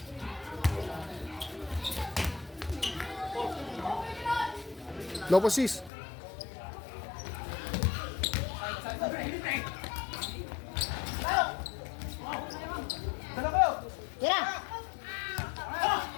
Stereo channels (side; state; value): right; drops out; at 5.9 s